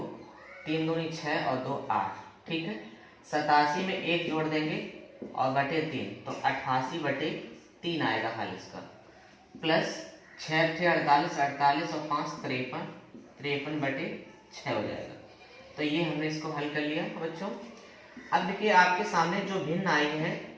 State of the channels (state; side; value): identical; both; correlation 1.00